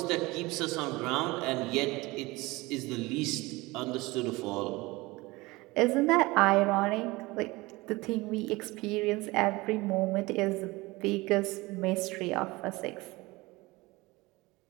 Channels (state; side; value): quieter; left; 21.9 dB